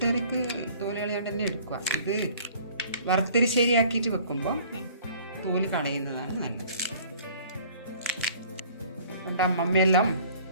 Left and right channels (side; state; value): both; inverted; correlation -0.52